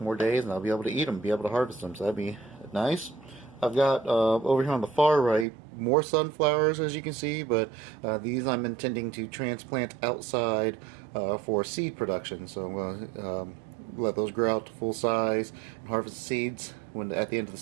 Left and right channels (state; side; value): drops out; left; at 5.5 s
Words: more days, and I'll be able to eat them, be able to harvest them, so that'd be nice. I've got over here on the far right more sunflowers, as you can see, but these I'm intending to transplant outside for seed production. So I'm going to let those grow out to full size and harvest the seeds at the end of the